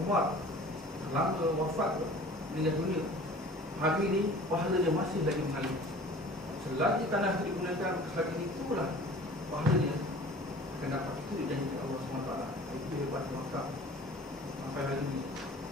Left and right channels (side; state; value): both; normal; correlation 0.45